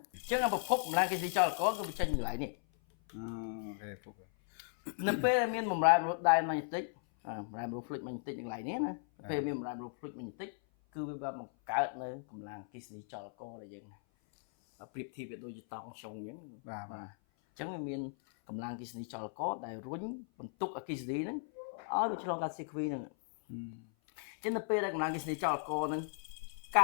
អញ្ចឹងប្រភពកម្លាំងគិសនីចលកគឺវាចេញពីកន្លែងនេះនៅពេលមានបំរែបំរួលដែនម៉ាញេទិកបំរែបំរួល fluid ម៉ាញេទិកនៅកន្លែងនេះណាពេលមានបំរែបំរួល fluid ម៉ាញេទិកគឺវាបានបង្កើតនៅកម្លាំងគិសនីចលកដែលយើងប្រៀបធៀបវាដូចជាតង់ចុងអញ្ចឹងបាទអញ្ចឹងវាមានកម្លាំងគិសនីចលកដែលរុញបន្ទុកអគិសនីហ្នឹងឲ្យវាឆ្លងកាត់ CQ ហ្នឹងចឹងនៅពេលដែលកម្លាំងគិសនីចលកហ្នឹងកា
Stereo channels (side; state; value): right; silent; 53 dB below the other